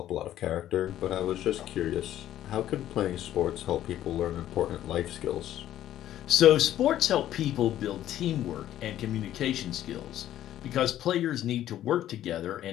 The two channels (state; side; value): quieter; right; 12.4 dB